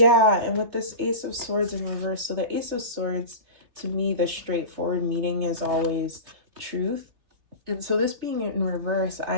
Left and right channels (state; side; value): late; left; 3.3 ms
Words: and with this Ace of Swords in reverse, so the Ace of Swords, to me, the straightforward meaning is always truth. And so this being in reverse,